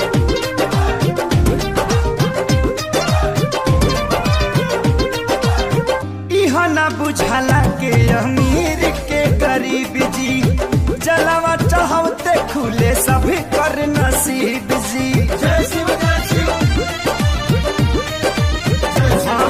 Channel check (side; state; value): both; identical; correlation 1.00